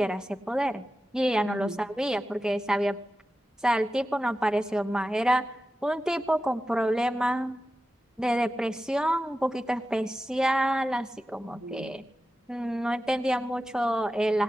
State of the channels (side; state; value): both; normal; correlation 0.93